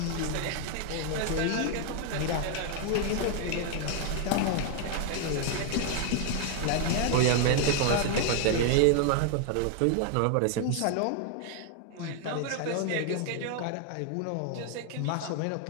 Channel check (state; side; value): different; both; correlation 0.00